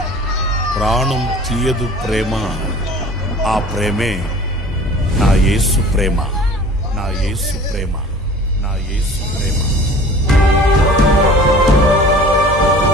ప్రాణం తీయదు ప్రేమ. ఆ ప్రేమే నా యేసు ప్రేమ, నా యేసు ప్రేమ, నా యేసు ప్రేమ.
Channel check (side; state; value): both; normal; correlation 0.44